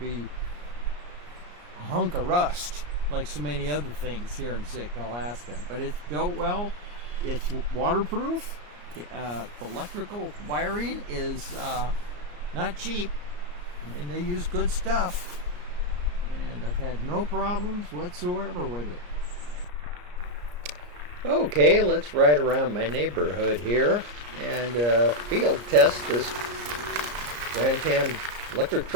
a hunk of rust like so many other things here in Sitka, Alaska. But it's built well, it's waterproof, the electrical wiring is not cheap. I mean, they use good stuff, and I've had no problems whatsoever with it. Okay, let's ride around my neighborhood here and field test this Grandtan Electric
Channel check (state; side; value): late; left; 34 ms